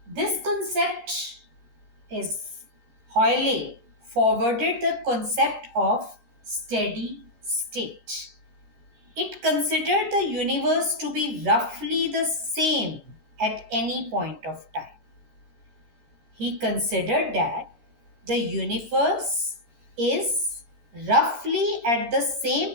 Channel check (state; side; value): late; left; 14 ms